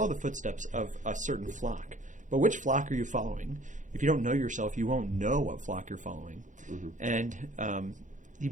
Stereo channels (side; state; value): left; late; 0.37 ms